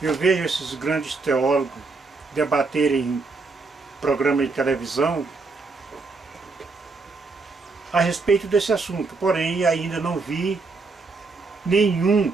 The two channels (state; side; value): quieter; left; 4.0 dB